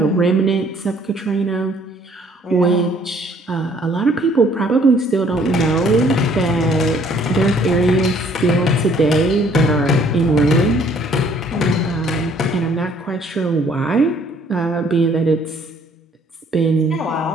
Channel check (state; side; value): normal; both; correlation 0.60